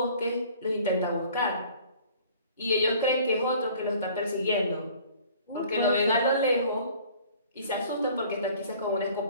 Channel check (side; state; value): both; inverted; correlation -0.52